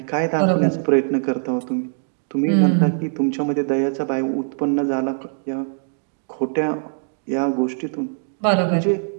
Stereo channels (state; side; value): silent; left; digital silence